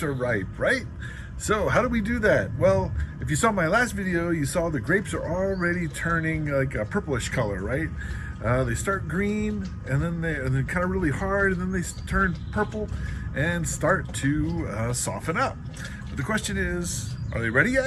are ripe, right? So how do we do that? Well, if you saw my last video, you saw the grapes are already turning like a purplish color, right? They start green and then they're kind of really hard, and then they turn purple and start to soften up. But the question is, are they ready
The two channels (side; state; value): both; identical; correlation 1.00